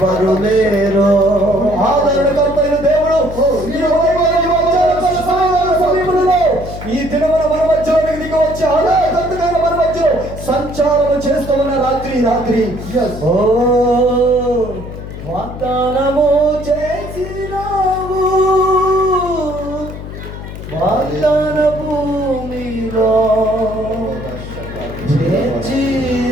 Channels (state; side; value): noise; left; hum, 10 dB below the sound